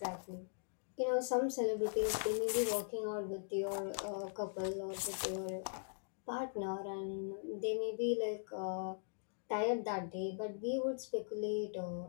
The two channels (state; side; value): silent; right; digital silence